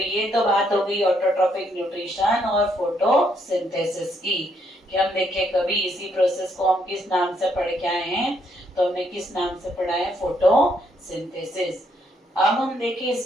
तो बात हो गई ऑटोट्रॉफिक न्यूट्रिशन और फोटोसिंथेसिस की। कि हम देखें कभी इसी प्रोसेस को हम किस नाम से पढ़ के आए हैं, तो हमने किस नाम से पढ़ा है, फोटोसिंथेसिस। अब हम देखें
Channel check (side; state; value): both; normal; correlation 0.73